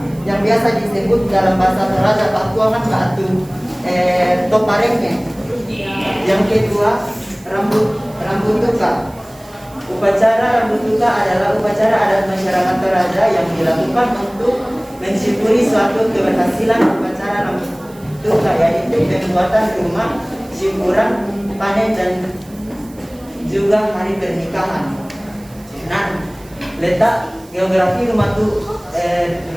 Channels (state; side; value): noise; right; hiss, 25 dB below the sound